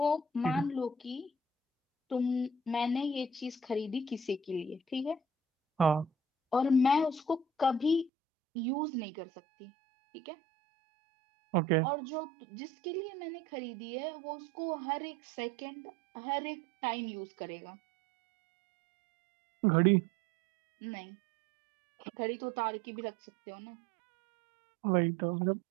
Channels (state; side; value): drops out; left; at 8.1 s